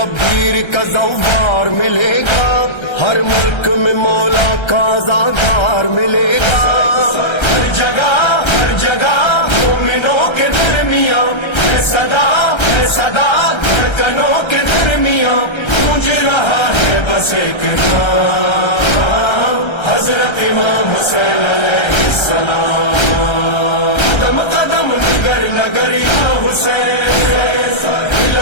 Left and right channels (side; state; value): right; late; 1.3 ms